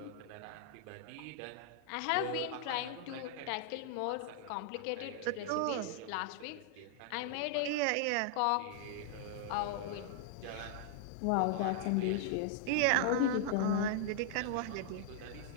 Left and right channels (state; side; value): different; both; correlation -0.01